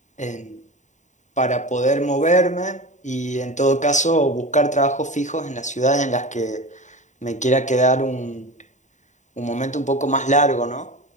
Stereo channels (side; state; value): right; late; 0.35 ms